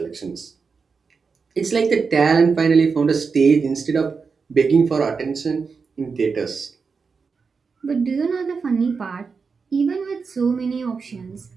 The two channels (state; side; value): quieter; left; 5.1 dB